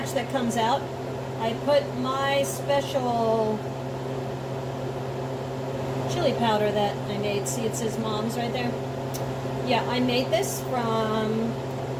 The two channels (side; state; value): both; identical; correlation 1.00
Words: that comes out, I put my special chili powder that I made. See, it says Mom's right there. Yeah, I made this from